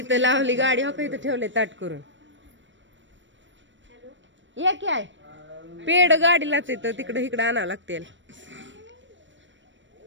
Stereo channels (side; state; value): left; late; 0.54 ms